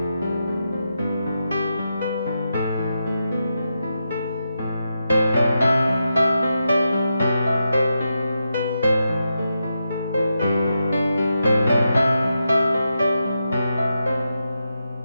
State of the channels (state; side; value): inverted; both; correlation -0.87